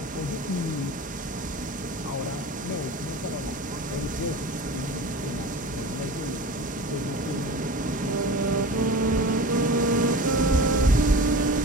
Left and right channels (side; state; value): both; normal; correlation 0.34